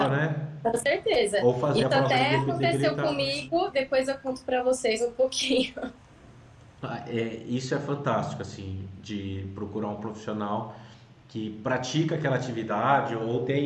né? Com certeza. Ou fazer isso a prova até aconteceu comigo, depois eu conto para vocês um pouquinho. Isso é fantástico, assim, de procurar um profissional que pratica aquela atividade ou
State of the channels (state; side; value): identical; both; correlation 1.00